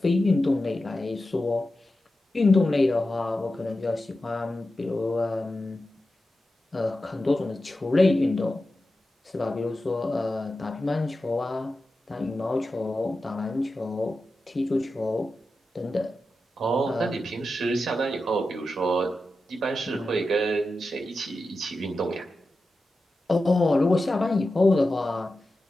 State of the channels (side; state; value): both; normal; correlation 0.92